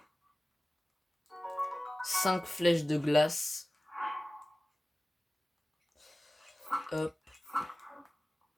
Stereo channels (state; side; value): normal; both; correlation 0.97